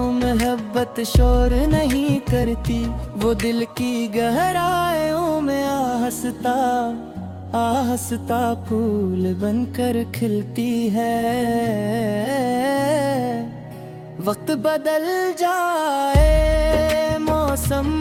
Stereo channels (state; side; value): identical; both; correlation 1.00